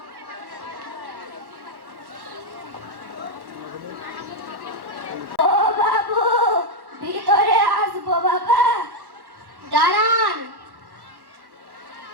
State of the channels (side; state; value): left; late; 1.1 ms